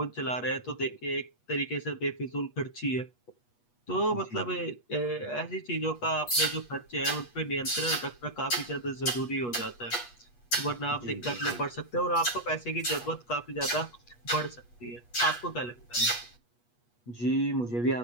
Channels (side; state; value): right; late; 8.3 ms